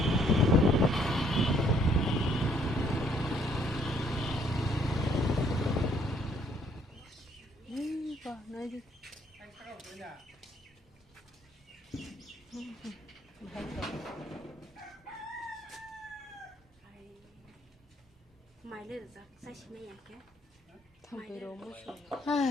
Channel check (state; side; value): normal; both; correlation 0.66